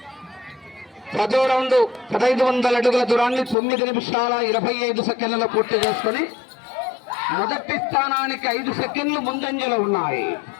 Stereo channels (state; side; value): drops out; right; at 3.6 s